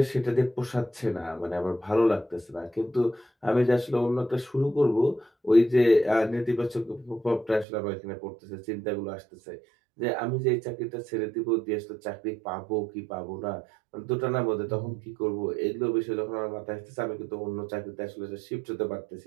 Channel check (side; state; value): left; drops out; at 7.7 s